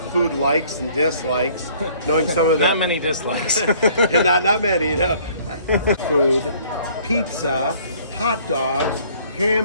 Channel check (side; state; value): both; inverted; correlation -0.57